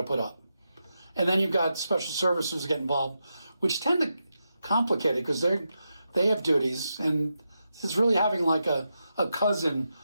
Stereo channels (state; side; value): inverted; both; correlation -0.87